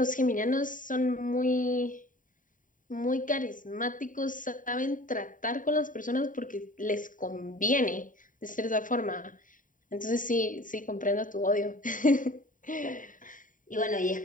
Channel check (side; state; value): right; late; 0.39 ms